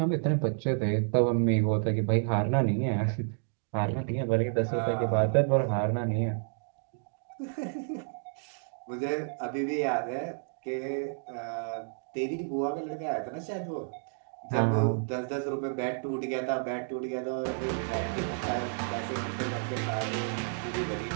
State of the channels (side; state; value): left; silent; digital silence